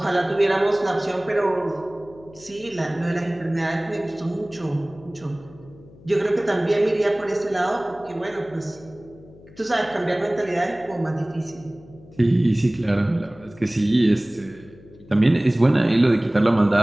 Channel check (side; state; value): left; noise; hum, 22 dB below the sound